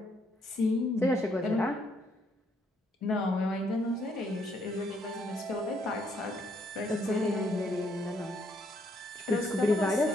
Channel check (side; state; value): both; normal; correlation 0.71